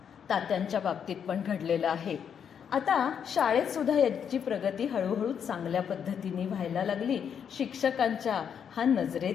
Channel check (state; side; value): quieter; right; 7.8 dB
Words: तात्यांच्या बाबतीत पण घडलेलं आहे. आता शाळेत सुद्धा याची प्रगती हळूहळू चांगल्या पद्धतीने व्हायला लागली. शिक्षकांच्या हा